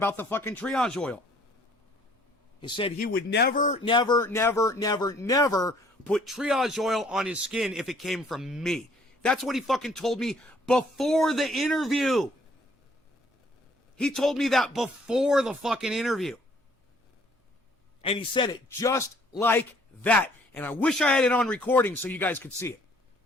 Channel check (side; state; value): both; normal; correlation 0.60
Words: the fucking triage oil. He said he would never, never, never, never, never put triage oil on his skin if it came from me. That's what he fucking told me before the interview. He told me that before the fucking interview. And he said it just like that. And I wish I had it on recording so you guys could see it.